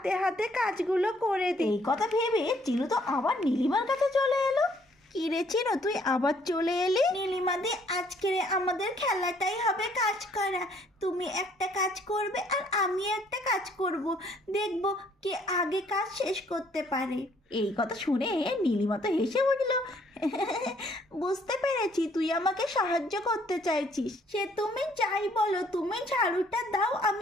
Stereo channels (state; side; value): normal; both; correlation 0.64